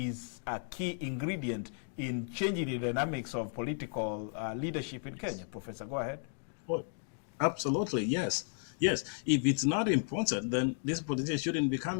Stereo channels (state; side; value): silent; right; 55 dB below the other